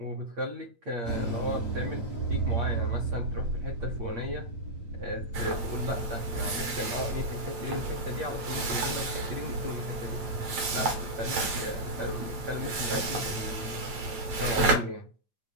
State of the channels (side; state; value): left; late; 9.0 ms